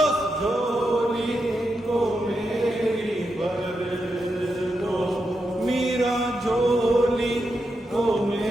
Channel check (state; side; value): normal; both; correlation 0.85